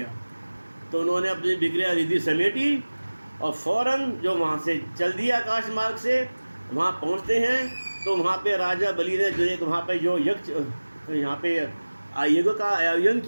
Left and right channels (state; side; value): inverted; both; correlation -1.00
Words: तो उन्होंने अपनी विक्रिया रिद्धि समेटी और फ़ौरन जो वहाँ से चल दिया आकाश मार्ग से, वहाँ पहुँचते हैं। तो वहाँ पे राजा बलि ने जो एक वहाँ पे जो यज्ञ, यहाँ पे यज्ञ का आयोजन